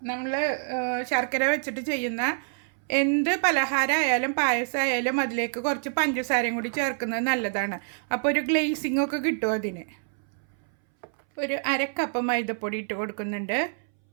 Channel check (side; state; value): left; silent; 60 dB below the other